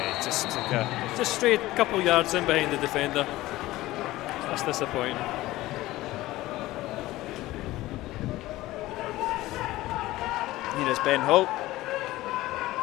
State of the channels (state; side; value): quieter; right; 17.3 dB